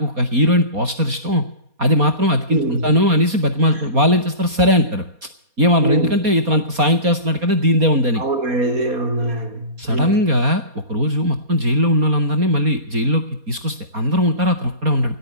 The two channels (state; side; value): late; left; 4.2 ms